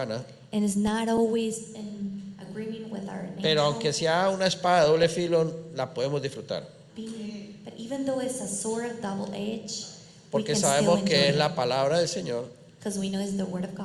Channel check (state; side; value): identical; both; correlation 1.00